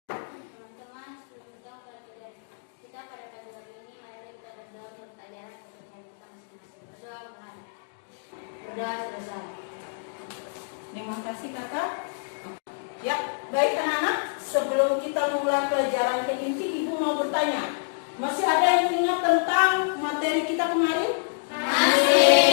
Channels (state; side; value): silent; right; digital silence